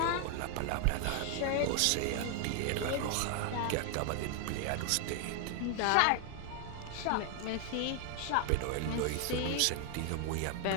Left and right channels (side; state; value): both; different; correlation 0.00